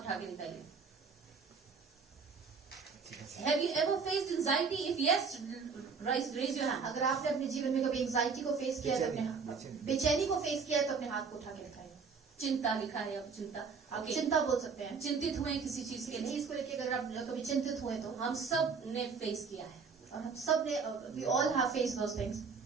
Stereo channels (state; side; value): quieter; left; 5.3 dB